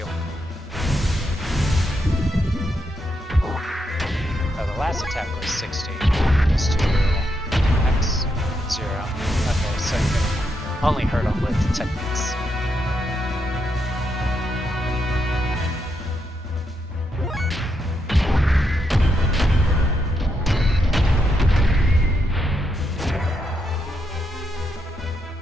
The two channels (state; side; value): normal; both; correlation 0.81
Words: Oh, the last attack was 60. It's 2 X 0. Okay, so you can only hurt him with techniques.